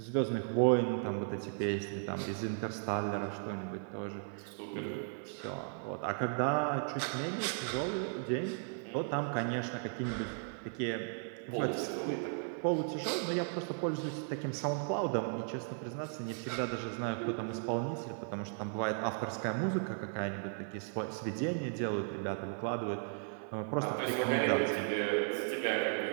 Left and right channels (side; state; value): left; silent; 54 dB below the other